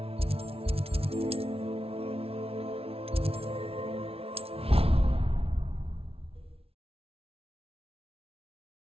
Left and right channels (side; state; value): left; late; 0.28 ms